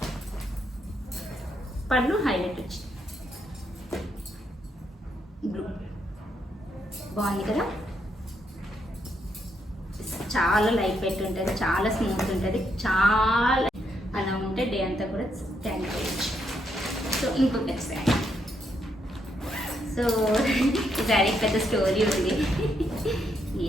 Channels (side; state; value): both; normal; correlation 0.77